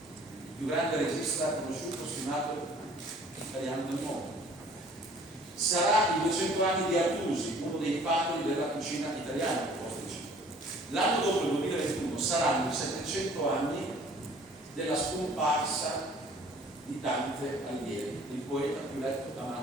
il più grande regista conosciuto, stimato italiano del mondo. Sarà i 200 anni di Artusi, uno dei padri della cucina italiana. L'anno dopo, il 2021, saranno i 700 anni della scomparsa di Dante Alighieri, il poeta più letto,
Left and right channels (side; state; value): both; normal; correlation 0.53